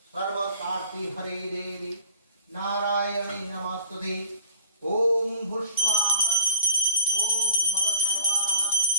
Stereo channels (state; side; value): inverted; both; correlation -0.48